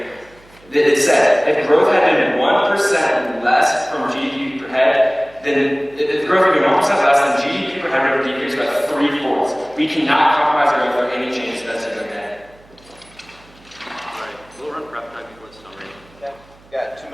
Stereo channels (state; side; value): noise; right; hum, 27 dB below the sound